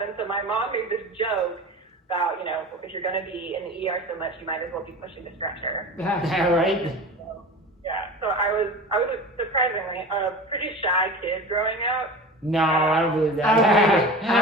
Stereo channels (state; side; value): normal; both; correlation 0.33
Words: And so my mom made this joke about, you know, if you're going to be in the ER so much, you might as well be pushing the stretcher. Right? Yeah. So I was surprisingly a pretty shy kid growing up. No, I don't believe that.